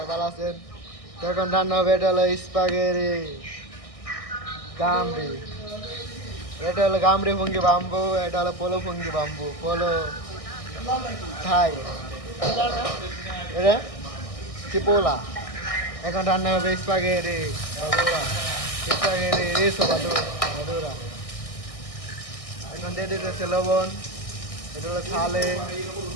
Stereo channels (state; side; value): late; right; 1.6 ms